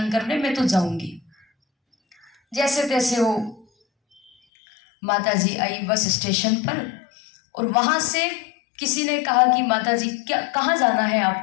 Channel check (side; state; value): right; drops out; at 4.3 s